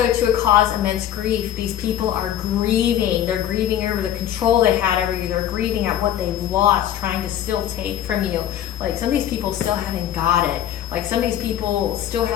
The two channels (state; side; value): quieter; right; 11.0 dB